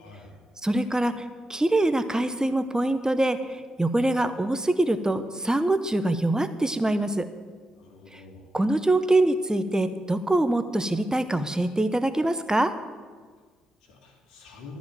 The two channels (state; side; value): normal; both; correlation 0.90